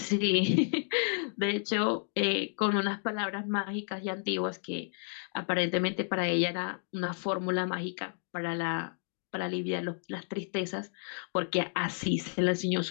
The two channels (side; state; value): right; silent; 57 dB below the other